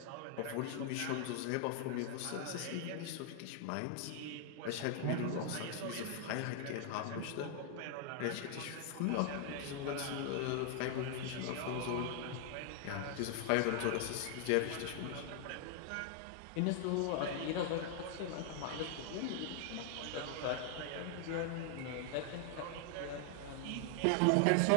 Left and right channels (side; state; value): both; different; correlation 0.00